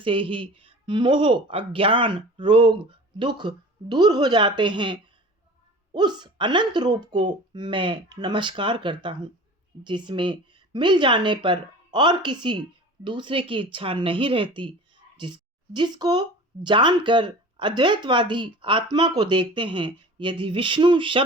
ही मोह, अज्ञान, रोग, दुख दूर हो जाते हैं, उस अनंत रूप को मैं नमस्कार करता हूँ। जिसमें मिल जाने पर और किसी दूसरे की इच्छा नहीं रहती। जिसको जानकर अद्वैतवादी आत्मा को देखते हैं। यदि विष्णु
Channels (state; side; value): normal; both; correlation 0.40